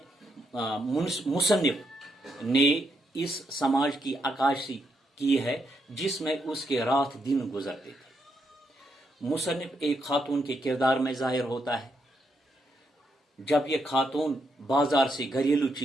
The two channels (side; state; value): both; normal; correlation 0.79